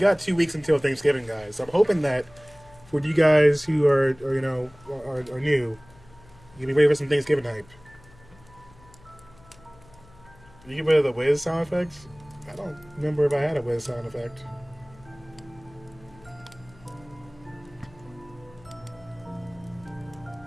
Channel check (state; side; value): noise; left; hum, 25 dB below the sound